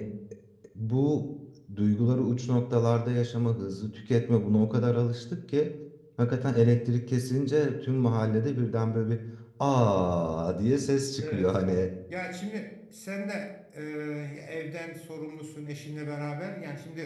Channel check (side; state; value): both; identical; correlation 1.00